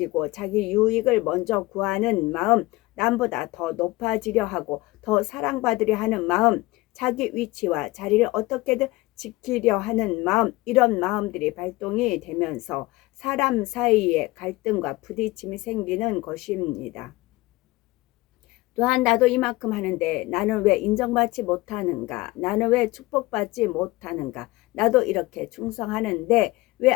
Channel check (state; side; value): quieter; right; 20.5 dB